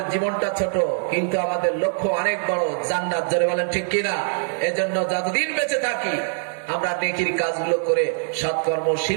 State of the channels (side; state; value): left; silent; digital silence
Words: জীবনটা ছোট, কিন্তু আমাদের লক্ষ্য অনেক বড়, জান্নাত, জোরে বলেন ঠিক কিনা? এজন্য যতদিন বেঁচে থাকি আমরা নেকির কাজগুলো করে